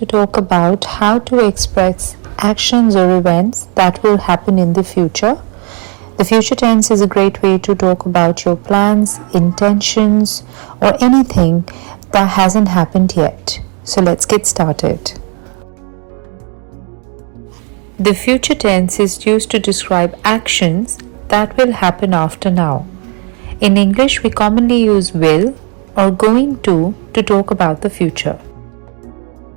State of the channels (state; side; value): quieter; left; 35.8 dB